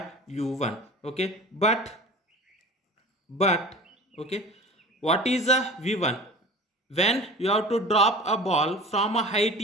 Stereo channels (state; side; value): normal; both; correlation 0.37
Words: u1. Okay, but okay, what is a v1? When you have to drop a ball from a height